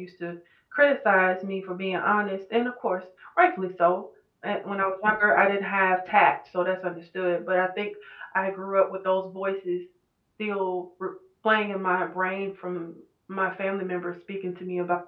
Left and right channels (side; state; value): both; identical; correlation 1.00